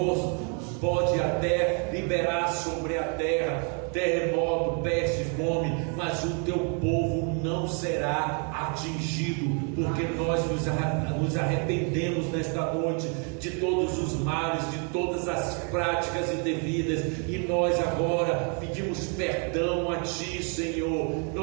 pode até liberar sobre a terra terremoto, peste, fome, mas o teu povo não será atingido, porque nós nos arrependemos nesta noite de todos os males, de todas as práticas indevidas, e nós agora pedimos perdão a Ti, Senhor.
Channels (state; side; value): quieter; left; 38.8 dB